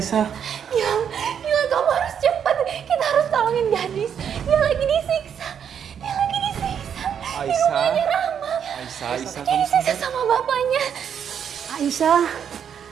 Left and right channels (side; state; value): left; quieter; 8.2 dB